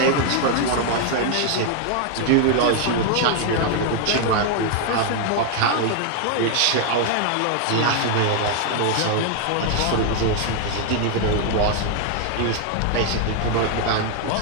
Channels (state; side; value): different; both; correlation 0.00